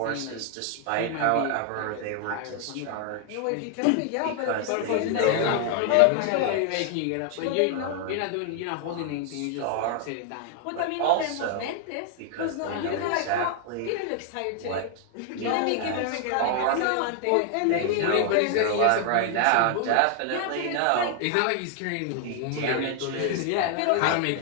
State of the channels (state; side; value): different; both; correlation 0.00